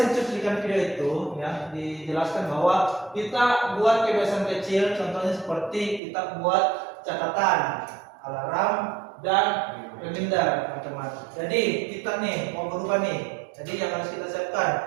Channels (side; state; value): left; drops out; at 6.0 s